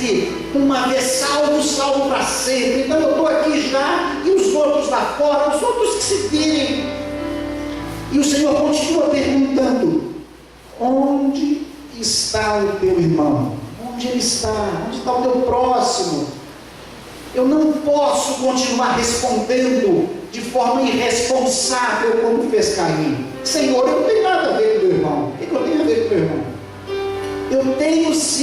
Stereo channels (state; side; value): identical; both; correlation 1.00